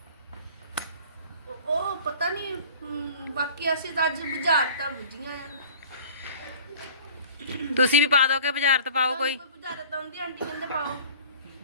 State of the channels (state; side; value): inverted; both; correlation -0.44